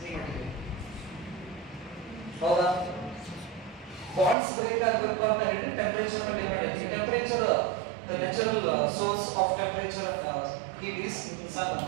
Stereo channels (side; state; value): left; drops out; at 4.4 s